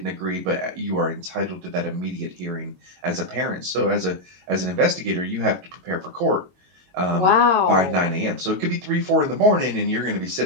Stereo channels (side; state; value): left; late; 22 ms